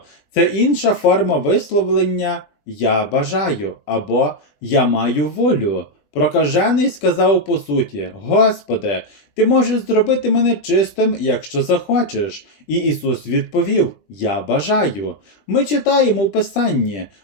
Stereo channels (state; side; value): late; right; 20 ms